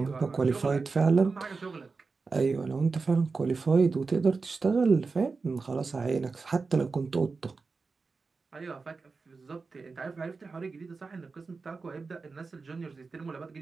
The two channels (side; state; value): left; quieter; 4.3 dB